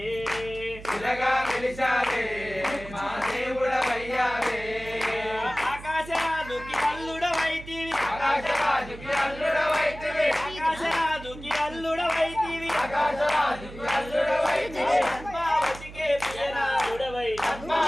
శిలగా వెలిశావే మా దేవుడవయ్యావే. ఆకాశరాజుకి అల్లుడవైతివి, ఆకాశరాజుకి అల్లుడవైతివి, ఆకాశరాజుకి అల్లుడవైతివి, ఆకాశరాజుకి అల్లుడవైతివి. పద్మావతికే ప్రియనాథుడవై,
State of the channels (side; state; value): right; noise; hum, 15 dB below the sound